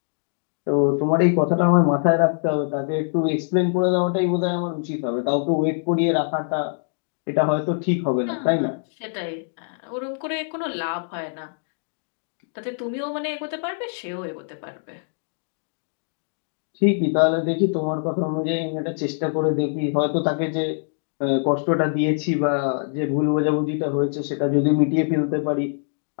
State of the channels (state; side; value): silent; right; digital silence